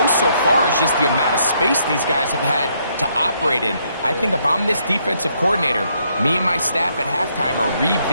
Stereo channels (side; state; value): both; inverted; correlation -0.72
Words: so far is just the amount of space these guys have had to operate in. I think if I'm this defensive coordinator, me and my staff at halftime are